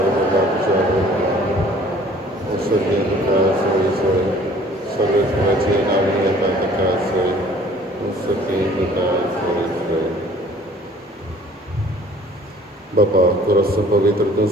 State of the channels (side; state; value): both; normal; correlation 0.53